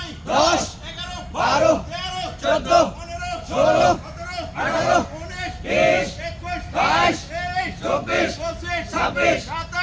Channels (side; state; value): both; identical; correlation 1.00